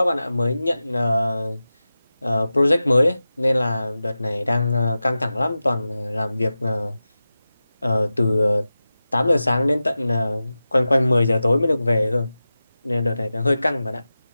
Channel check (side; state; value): both; inverted; correlation -0.94